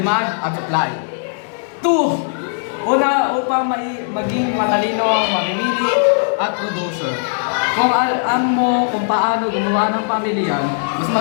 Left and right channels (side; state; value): right; silent; digital silence